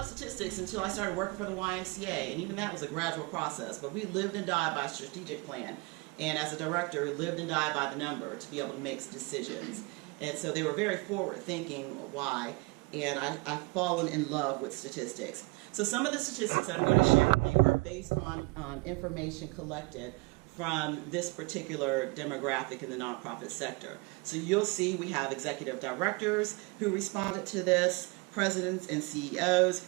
statistics until I started working for the YMCA, and even that was a gradual process, but we lived and died by a strategic plan. And as a director, lived and died by the number to be able to make decisions. And so they were very forward-thinking why, and I've fallen in love with statistics. So some of the statistics that I'm going to share with you are based on information collected from this particular demographic in the nonprofit sector. So you'll see we have executive directors who responded to this, presidents and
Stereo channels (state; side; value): quieter; left; 27.5 dB